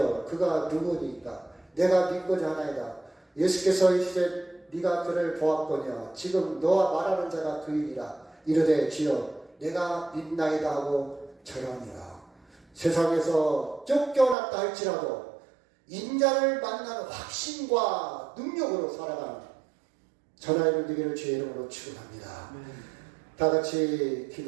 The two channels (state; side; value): drops out; left; at 14.4 s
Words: 그가 누구니까? 내가 믿고자 하나이다. 예수께서 이르시되 네가 그를 보았거냐? 지금 너와 말하는 자가 그이니라. 이르되 주여 내가 믿나이다 하고 절하니라. 세상에서 쫓겨났다 할지라도 인자를 만나는 확신과 능력으로 살아가는 저나 이름 되기를 주의 이름으로 축원합니다. 다 같이